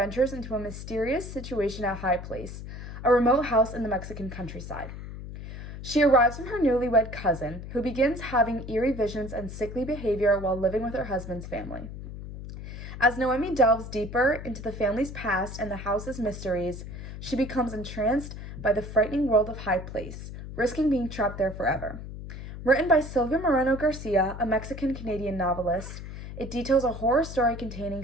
into a mysterious situation at High Place, a remote house in the Mexican countryside. She arrives from her newlywed cousin, who begins having eerie visions and sickly behavior while living with her husband's family. As Noemi delves deeper into the family's past and the house's mysteries, she becomes entranced by the frightening world of High Place, risking being trapped there forever. Written by Silvia Moreno Garcia, a Mexican-Canadian novelist, it details a horror story containing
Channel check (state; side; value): noise; left; hum, 10 dB below the sound